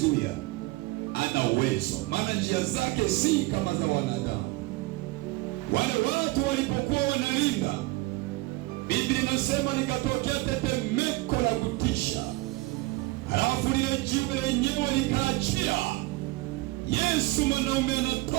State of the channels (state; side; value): quieter; left; 21.1 dB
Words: Ana uwezo, maana njia zake si kama za wanadamu. Wale watu walipokuwa wanalinda, Biblia inasema likatokea tetemeko la kutisha, halafu lile jiwe lenyewe likaachia. Yesu mwanaume